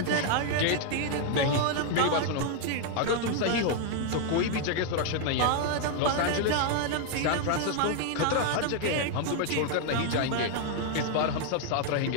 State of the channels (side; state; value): both; different; correlation 0.00